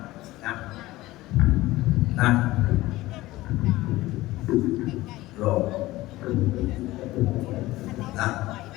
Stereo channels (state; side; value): quieter; right; 17.9 dB